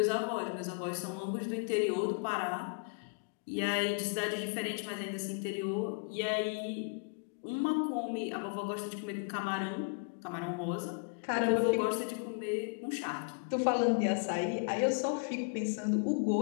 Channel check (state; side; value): quieter; right; 35.2 dB